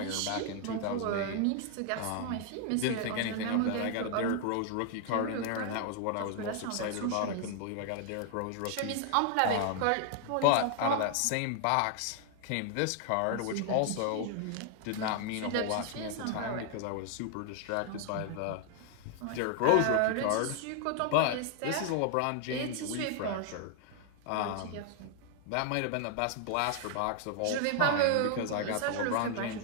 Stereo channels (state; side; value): different; both; correlation 0.00